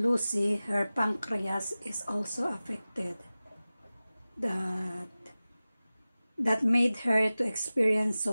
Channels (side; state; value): both; inverted; correlation -0.97